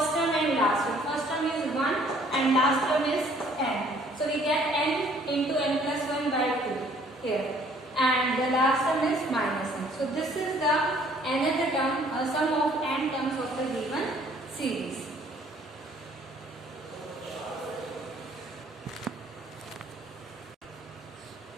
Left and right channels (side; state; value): both; normal; correlation 0.59